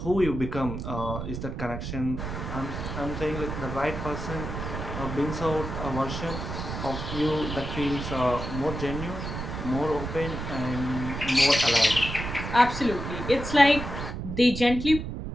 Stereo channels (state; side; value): noise; right; rumble, 6 dB below the sound